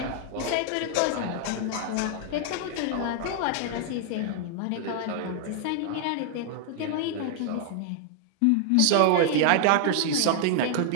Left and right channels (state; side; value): different; both; correlation 0.00